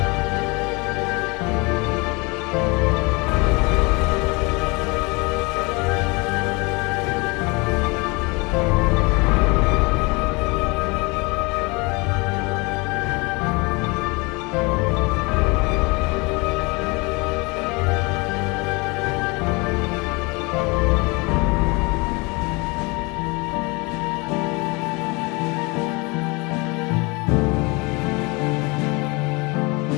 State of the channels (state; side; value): quieter; right; 27.1 dB